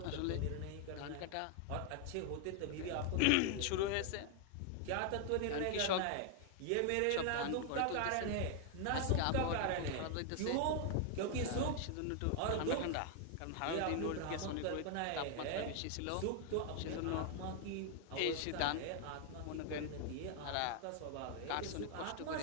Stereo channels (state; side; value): different; both; correlation 0.00